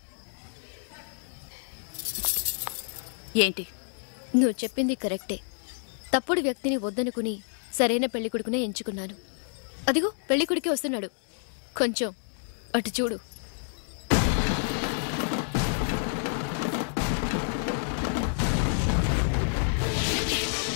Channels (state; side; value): silent; right; digital silence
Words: ఏంటి? నువ్వు చెప్పింది కరెక్టే. తప్పుడు వ్యక్తిని వద్దనుకుని సరైన పెళ్లికొడుకునే ఎంచుకున్నాను. అదిగో పెళ్లికొడుకే వస్తున్నాడు. కొంచెం అటు చూడు.